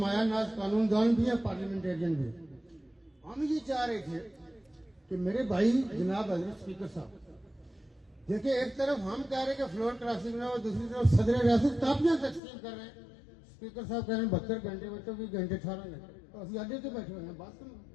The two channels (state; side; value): drops out; right; at 12.4 s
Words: नाज कानूनदान भी है, पार्लियामेंटेरियन भी है। हम ये चाह रहे थे कि मेरे भाई जनाब हजरत स्पीकर साहब देखिए, एक तरफ हम कह रहे हैं कि फ्लोर क्रॉसिंग ना हो, दूसरी तरफ सदर रियासत कापियां तकसीम कर रहे हैं। स्पीकर साहब कह रहे हैं 72 घंटे, बच्चों 20 घंटे 18 घंटे, तो अभी अड्डे से बैठे हुए हैं। बात